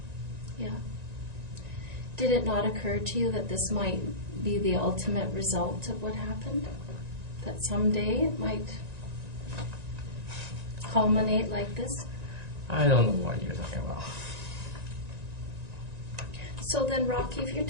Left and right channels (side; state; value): left; late; 1.9 ms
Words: Yeah. Did it not occur to you that this might be the ultimate result of what happened? That someday it might culminate like this? I don't know what you're talking about. So then, Rocky, if you're